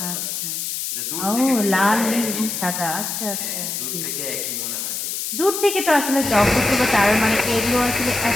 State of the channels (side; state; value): left; noise; hiss, 4 dB below the sound